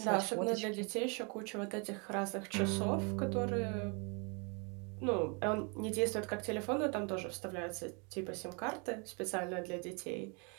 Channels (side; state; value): left; quieter; 33.8 dB